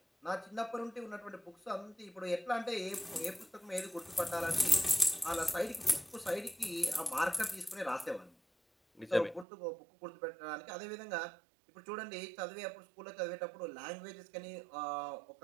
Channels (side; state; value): left; drops out; at 9.5 s